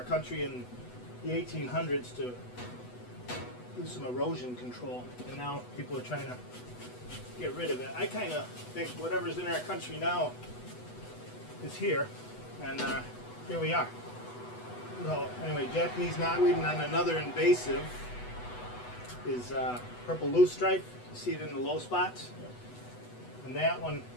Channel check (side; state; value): right; late; 8.1 ms